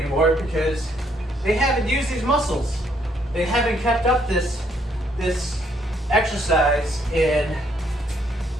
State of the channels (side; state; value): both; normal; correlation 0.70